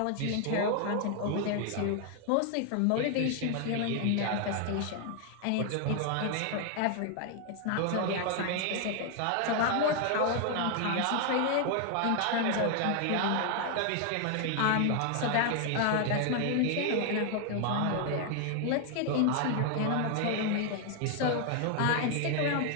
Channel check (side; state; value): both; different; correlation 0.00